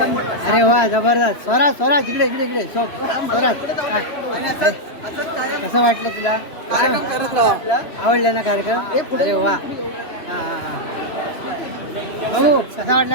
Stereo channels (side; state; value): right; late; 3.0 ms